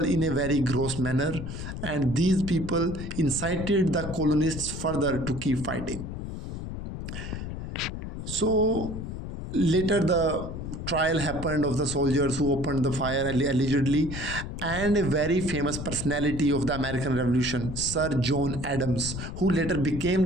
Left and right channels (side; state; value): left; noise; rumble, 7 dB below the sound